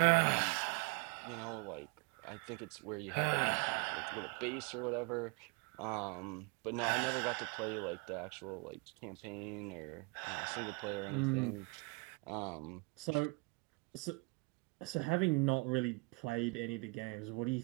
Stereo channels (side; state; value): left; quieter; 30.5 dB